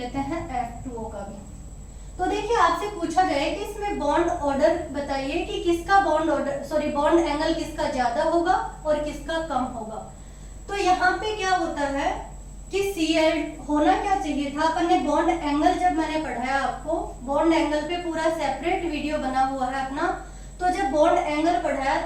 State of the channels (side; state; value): both; identical; correlation 1.00